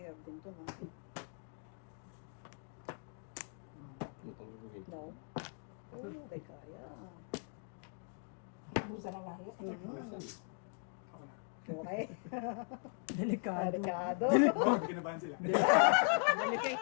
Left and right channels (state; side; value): silent; right; 52 dB below the other